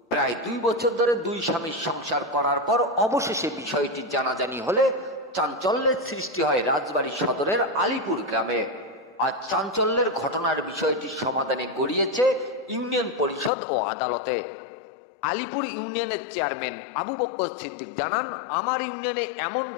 প্রায় 2 বছর ধরে দুই স্বামীর সংসার করার পর অবশেষে বিষয়টি জানাজানি হলে চাঞ্চল্যের সৃষ্টি হয় রাজবাড়ী সদরের আলিপুর গ্রামে। আর চাঞ্চল্যের ঘটনার বিষয়টি সমাধানে গড়িয়েছে ইউনিয়ন পরিষদ ও আদালতে। আলিপুর ইউনিয়নের চেয়ারম্যান আবু বকর সিদ্দিক জানান, আমার ইউনিয়নে এমন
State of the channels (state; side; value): drops out; right; at 13.5 s